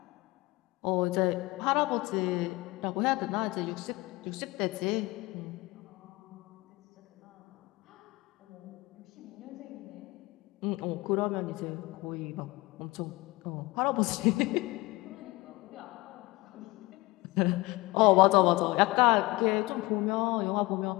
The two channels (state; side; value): quieter; right; 21.9 dB